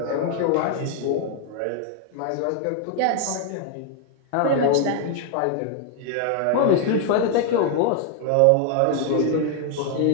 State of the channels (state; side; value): different; both; correlation 0.00